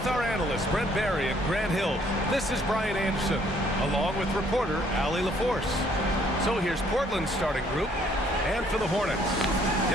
our analysts Brent Barry and Grant Hill, this is Brian Anderson, along with reporter Allie LaForce. So here's Portland's starting group, and for the Hornets,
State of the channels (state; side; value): normal; both; correlation 0.64